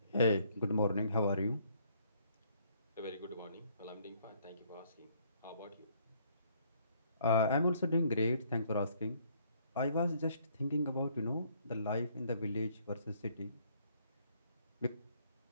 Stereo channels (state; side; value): inverted; both; correlation -0.65